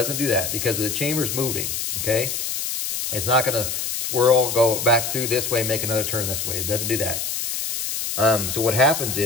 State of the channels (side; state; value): left; noise; hiss, 3 dB below the sound